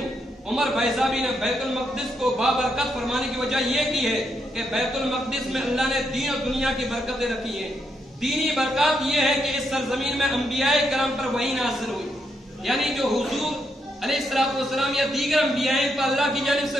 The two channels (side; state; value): both; normal; correlation 0.79